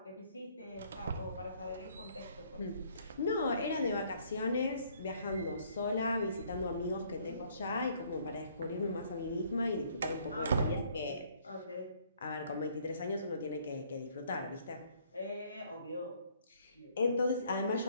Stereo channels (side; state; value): both; inverted; correlation -0.63